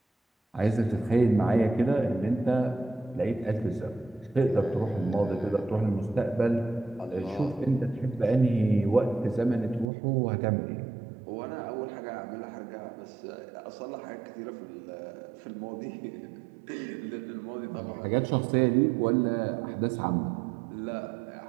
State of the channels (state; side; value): drops out; left; at 9.9 s